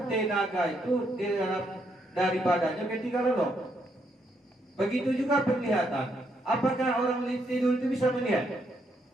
tenaga itu di dalam dari badannya ketika lalu. Begitu juga penglihatan. Apakah orang tidur itu bisa melihat?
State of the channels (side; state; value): both; normal; correlation 0.76